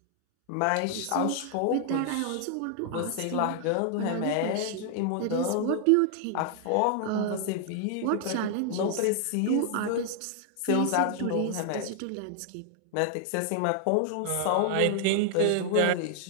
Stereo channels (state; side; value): different; both; correlation 0.00